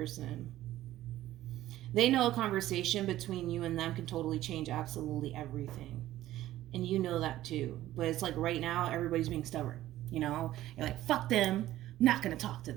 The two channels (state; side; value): quieter; left; 14.5 dB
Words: They know a conversation between you and them can totally change absolutely everything. And you know that too. But it's like right now, everybody's being stubborn. You know? You're like, fuck them. I'm not going to talk to